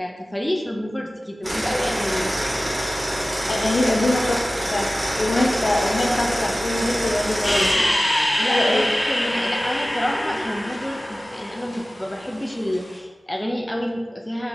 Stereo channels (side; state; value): both; normal; correlation 0.97